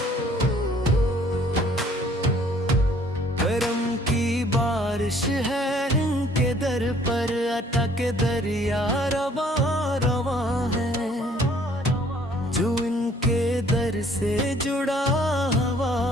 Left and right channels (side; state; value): both; normal; correlation 0.59